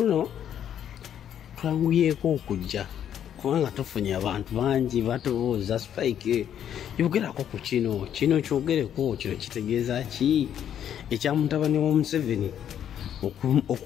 twanguyeko okujja kubanga tufunye abantu bangi batubuuza Spike yogerako ku kino kyogereko kino kitegeeza ki ekya mutabani wa Museveni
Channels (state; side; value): quieter; right; 9.7 dB